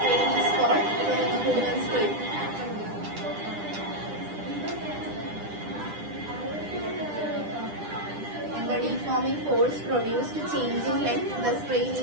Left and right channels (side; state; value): left; late; 9.9 ms